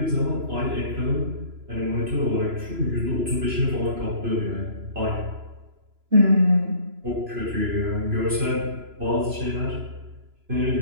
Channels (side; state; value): left; late; 3.0 ms